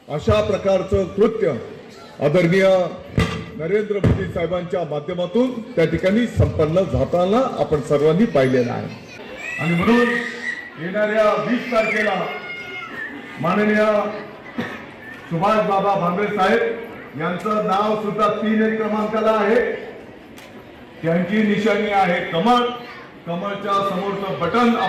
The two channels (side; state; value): both; identical; correlation 1.00